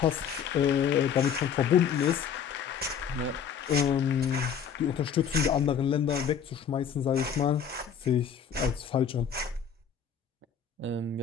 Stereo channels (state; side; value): quieter; right; 7.6 dB